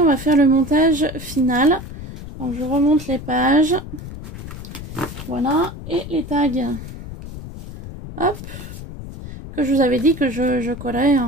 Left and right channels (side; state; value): left; noise; rumble, 11 dB below the sound